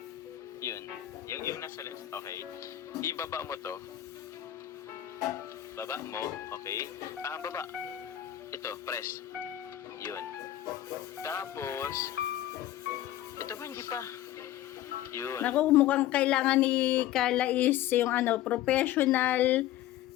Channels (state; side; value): quieter; right; 13.2 dB